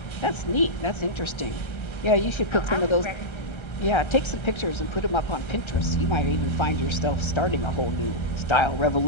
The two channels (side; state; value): right; late; 1.3 ms